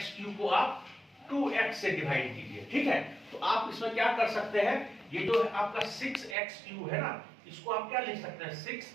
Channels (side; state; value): left; drops out; at 6.4 s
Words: को आप 2x से डिवाइड कीजिए, ठीक है। तो आप इसमें क्या कर सकते हैं, ये जो आपका 6x³ है ना, इसको आप क्या लिख सकते हैं 6